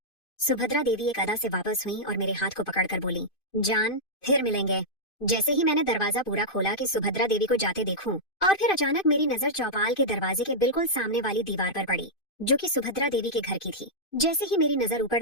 सुभद्रा देवी एक अदा से वापस हुई और मेरे हाथ को पकड़कर बोली, जान फिर मिलेंगे। जैसे ही मैंने दरवाजा पूरा खोला कि सुभद्रा देवी को जाते देखूं, और फिर अचानक मेरी नजर चौपाल के दरवाजे के बिल्कुल सामने वाली दीवार पर पड़ी, जो कि सुभद्रा देवी के घर की थी। जैसे ही मेरी नजर ऊपर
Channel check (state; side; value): late; right; 2.5 ms